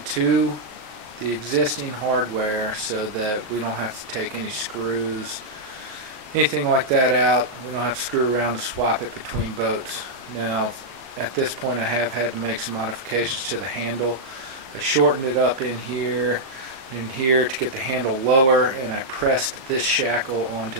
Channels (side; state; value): left; late; 38 ms